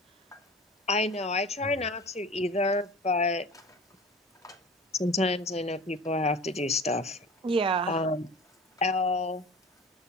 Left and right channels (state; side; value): normal; both; correlation 0.38